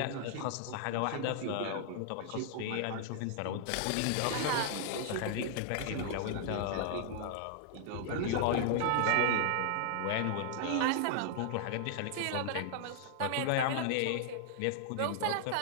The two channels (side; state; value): both; different; correlation -0.01